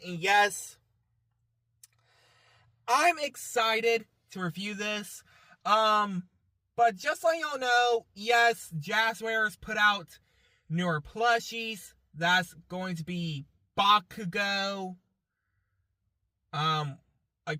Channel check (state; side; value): identical; both; correlation 1.00